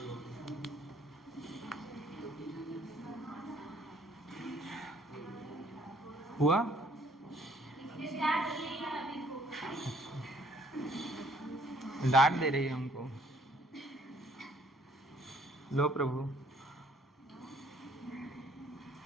हुआ, डांट दे रही है हमको। लो प्रभु,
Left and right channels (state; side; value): normal; both; correlation 0.62